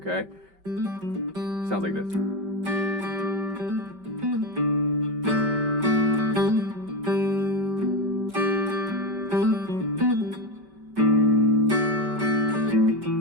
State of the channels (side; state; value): left; late; 5.2 ms